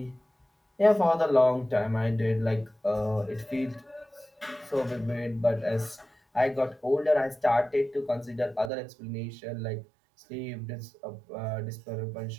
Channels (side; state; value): left; drops out; at 8.7 s